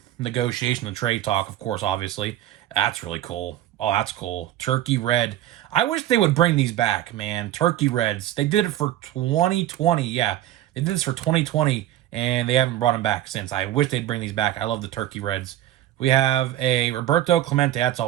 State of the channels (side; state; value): left; quieter; 13.2 dB